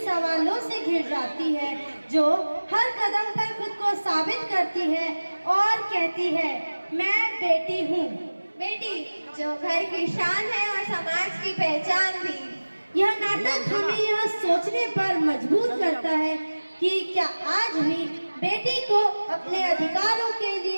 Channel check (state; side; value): inverted; both; correlation -1.00